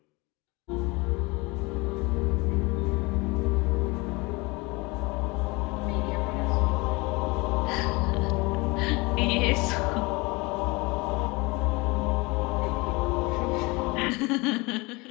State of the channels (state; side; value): quieter; right; 25.3 dB